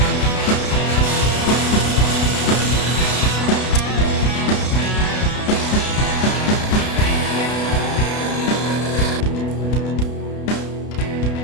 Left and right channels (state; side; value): late; right; 32 ms